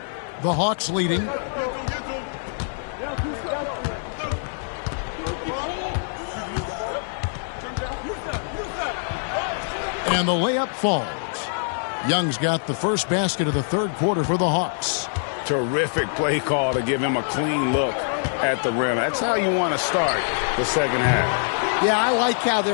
The Hawks leading. And the layup falls. Young's got the first basket of the third quarter for the Hawks. Terrific play call to give him a clean look at the rim. That's how you want to start the second half. Yeah, I like how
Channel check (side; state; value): right; silent; 60 dB below the other